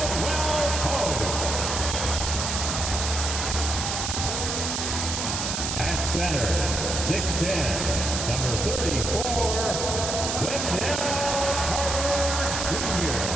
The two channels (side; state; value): right; noise; hiss, 2 dB below the sound